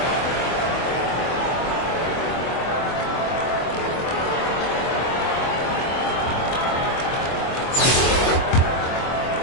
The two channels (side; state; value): right; late; 24 ms